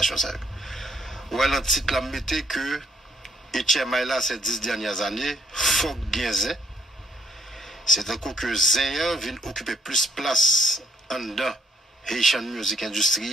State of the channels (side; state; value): both; normal; correlation 0.71